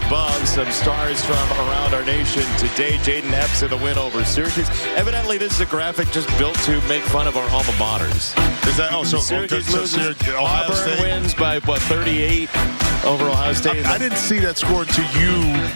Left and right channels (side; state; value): both; inverted; correlation -1.00